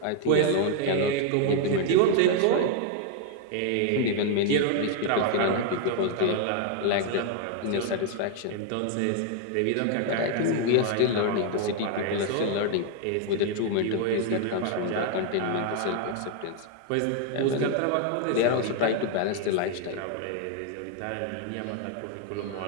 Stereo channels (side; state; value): both; different; correlation 0.00